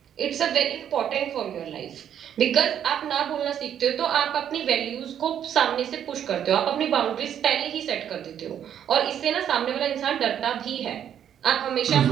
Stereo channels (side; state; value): left; quieter; 9.5 dB